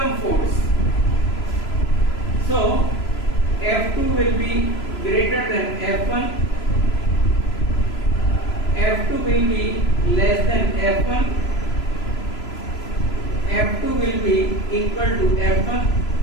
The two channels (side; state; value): right; late; 3.0 ms